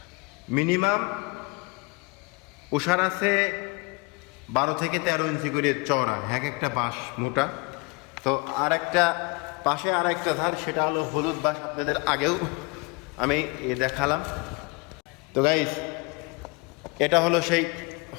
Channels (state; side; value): quieter; right; 28.4 dB